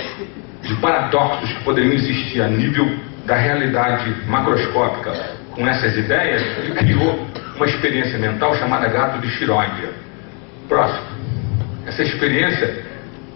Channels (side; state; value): right; quieter; 36.9 dB